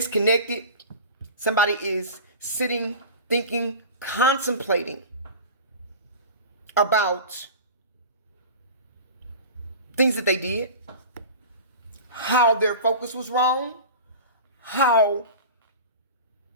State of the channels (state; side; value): inverted; both; correlation -0.35